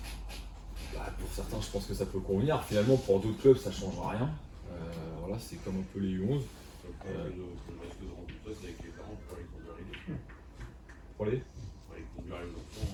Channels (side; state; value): both; identical; correlation 1.00